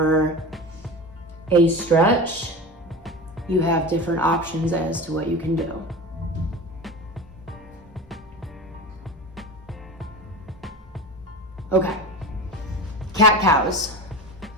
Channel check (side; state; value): both; normal; correlation 0.29